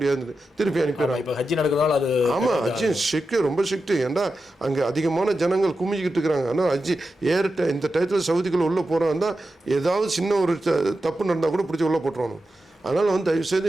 திருப்பி அனுப்பிடுறாங்க. ஹஜ்ஜி நடக்கிறதால அது ஆமாம், ஹஜ்ஜி ஸ்ட்ரிக்ட், ரொம்ப ஸ்ட்ரிக்ட். ஏன்டா அங்கே அதிகமான ஜனங்கள் குமிஞ்சிக்கிட்டு இருக்கிறாங்க. ஆனால் ஹஜ்ஜி இந்த டயத்தில் சவுதிக்குள்ளே உள்ளே போகிறாங்க, ஏதாவது சின்ன ஒரு தப்பு நடந்தால் கூட பிடிச்சி உள்ளே போட்டுருவாங்க. அதனால் வந்து தயவுசெய்து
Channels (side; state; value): both; normal; correlation 0.91